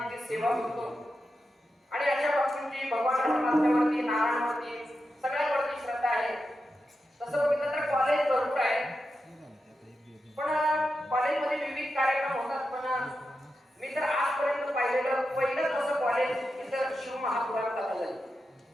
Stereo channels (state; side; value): normal; both; correlation 0.89